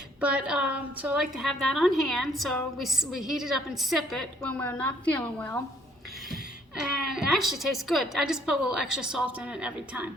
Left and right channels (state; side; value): normal; both; correlation 0.64